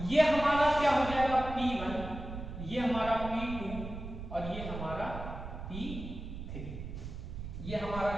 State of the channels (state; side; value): noise; right; rumble, 9 dB below the sound